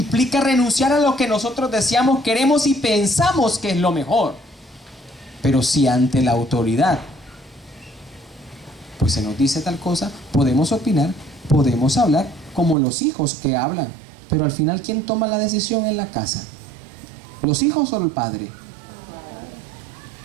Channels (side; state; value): left; drops out; at 12.8 s